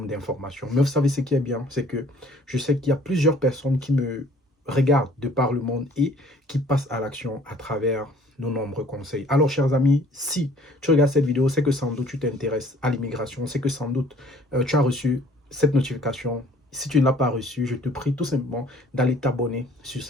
d'informations. Mais vous savez ce qui est bien, c'est que je sais qu'il y a plusieurs personnes qui me regardent de par le monde et qui passent à l'action à travers nos nombreux conseils. Alors, chers amis, si tu regardes cette vidéo, c'est que sans doute tu t'intéresses à l'immigration, c'est que sans doute tu as reçu cette notification. Si tu ne l'as pas reçu, je te prie tout simplement d'aller t'abonner sur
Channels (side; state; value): both; normal; correlation 0.54